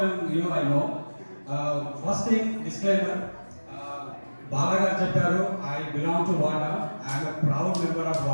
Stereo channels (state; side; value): inverted; both; correlation -1.00